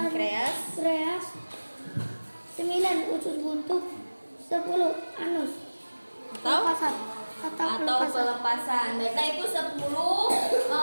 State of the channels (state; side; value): inverted; both; correlation -1.00